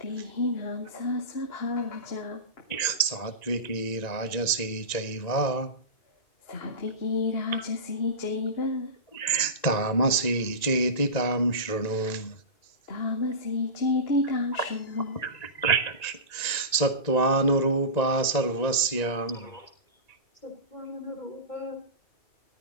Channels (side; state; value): right; late; 1.9 ms